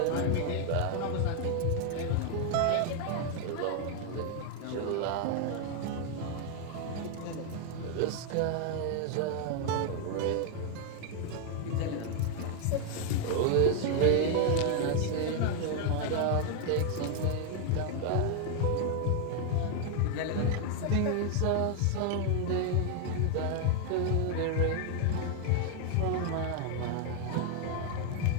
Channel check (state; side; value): different; both; correlation 0.00